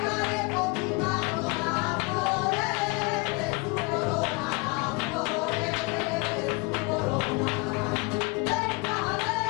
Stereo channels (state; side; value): quieter; right; 27.4 dB